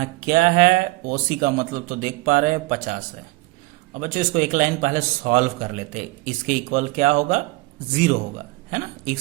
क्या है, OC का मतलब तो देख पा रहे हैं 50 है। अब बच्चों इसको एक लाइन पहले सॉल्व कर लेते हैं। इसके इक्वल क्या होगा, 0 होगा, है ना,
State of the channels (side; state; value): left; quieter; 21.7 dB